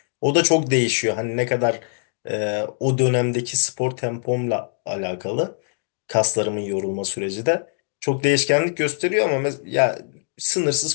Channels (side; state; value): right; silent; digital silence